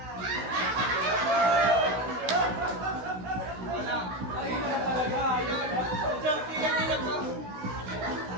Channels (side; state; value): left; late; 16 ms